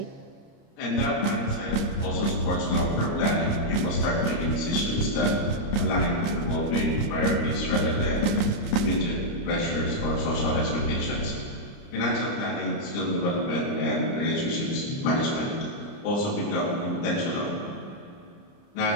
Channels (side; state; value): right; late; 29 ms